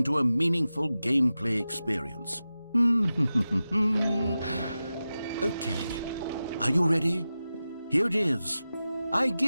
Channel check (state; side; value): inverted; both; correlation -0.93